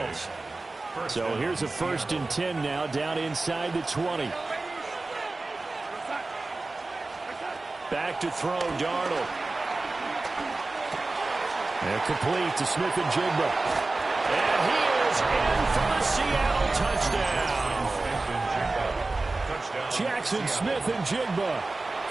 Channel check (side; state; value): left; quieter; 3.3 dB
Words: So here's a 1st and 10 now, down inside the 20. Back to throw, Darnold. And complete to Smith-Njigba. And he is in for the Seattle touchdown. Jackson Smith-Njigba